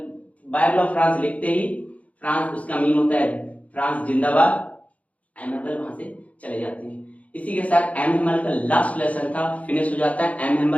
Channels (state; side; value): late; right; 0.067 ms